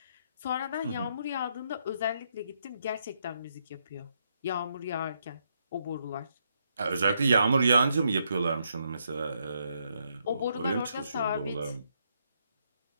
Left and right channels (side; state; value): both; inverted; correlation -0.76